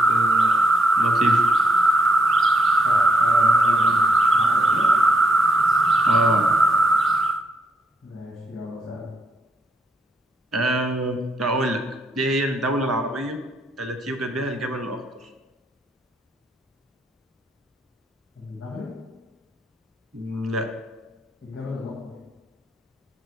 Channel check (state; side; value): normal; both; correlation 0.74